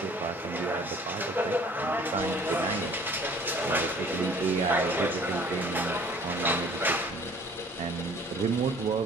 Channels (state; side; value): normal; both; correlation 0.52